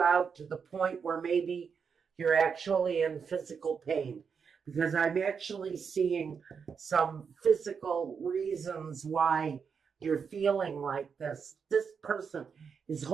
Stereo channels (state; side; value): quieter; left; 6.2 dB